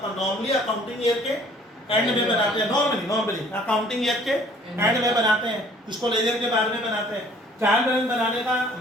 नॉर्मली अकाउंटिंग ईयर के एंड में बनाते हैं, नॉर्मली अकाउंटिंग ईयर के एंड में बनाते हैं, इसको लेजर के बाद में बनाते हैं। ट्रायल बैलेंस बनाने का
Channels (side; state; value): both; normal; correlation 0.56